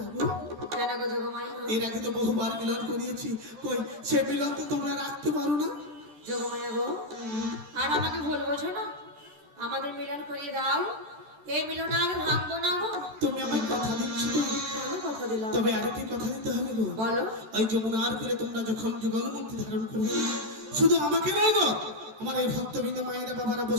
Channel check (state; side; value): late; left; 14 ms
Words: গো। কেন গো যোগমায়া? এর আগে তো বহুবার মিলন করিয়েছি, কই সে মিলন তো তোমরা রাখতে পারো না। যোগমায়া গো, আর আমাকে ভুল বোঝো না, আমাদের মিলন করিয়ে দাও। এই মিলন আর ভাঙবো না গো। তুমি আমায় কথা দিচ্ছ তো? আমি কথা দিলাম। তবে আরেকটি কথা দিতে হবে গো। বলো। ওই যমুনার করে তোমরা যখন যুগল মূর্তি ধারণ করবে, শুধু আমাকে নয় গো, আমার এই ভক্তবৃন্দ মায়েরা বাবারা